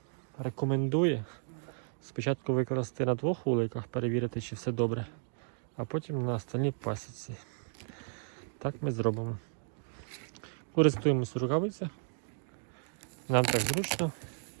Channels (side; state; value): left; silent; 55 dB below the other